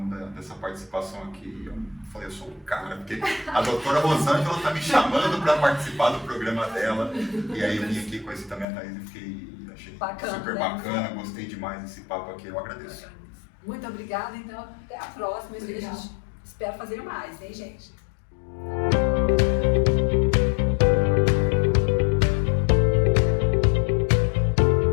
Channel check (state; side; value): drops out; right; at 8.7 s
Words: dessa participação aqui, eu falei, eu sou o cara, porque a doutora Rosângela está me chamando para participar do programa dela. E aí eu vim aqui, conheci também a Thaís e achei bacana, super né? bacana, gostei demais desse papo aqui, eu agradeço. Muito obrigada, então até a próxima. A gente espera fazer mais, hein, gente?